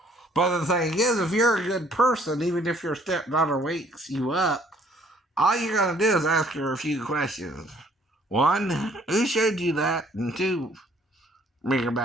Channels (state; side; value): normal; both; correlation 0.61